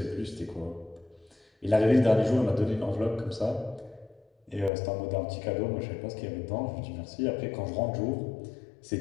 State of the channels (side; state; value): right; drops out; at 4.7 s